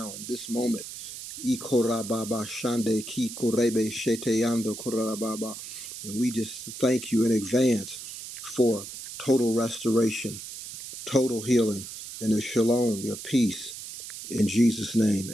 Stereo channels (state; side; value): noise; right; hiss, 10 dB below the sound